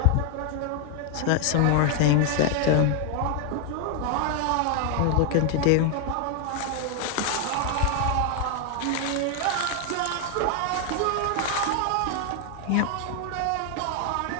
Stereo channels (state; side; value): different; both; correlation 0.00